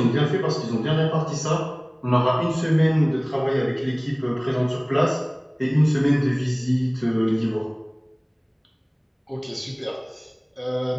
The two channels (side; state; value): both; identical; correlation 1.00